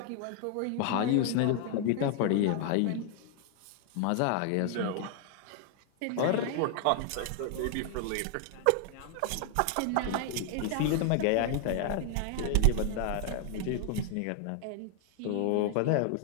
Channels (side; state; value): both; different; correlation 0.00